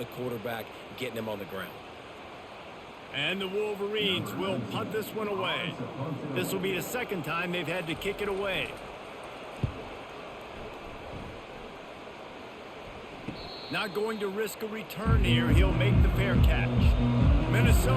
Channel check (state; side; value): identical; both; correlation 1.00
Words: quarterback, getting him on the ground. And the Wolverines will punt this one away. This will be the second time they've had to kick it away. Not going to risk a return here. He'll make the fair catch.